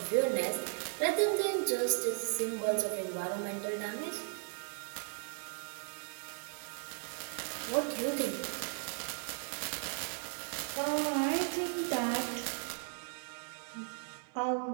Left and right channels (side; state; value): left; silent; 53 dB below the other